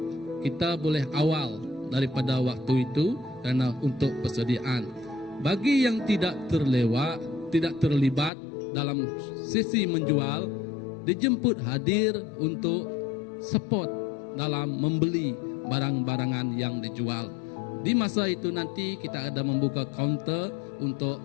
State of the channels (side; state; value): right; drops out; at 8.3 s